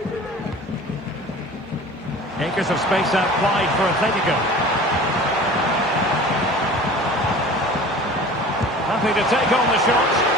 Acres of space out wide for Atletico. Happy to take on the shot.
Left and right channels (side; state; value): both; normal; correlation 0.41